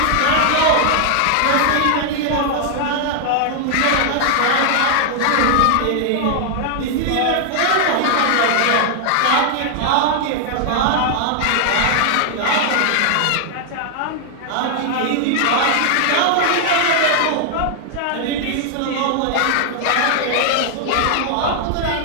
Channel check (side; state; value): both; different; correlation 0.00